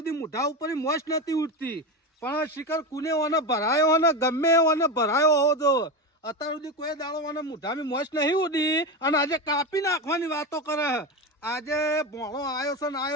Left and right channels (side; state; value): both; normal; correlation 0.18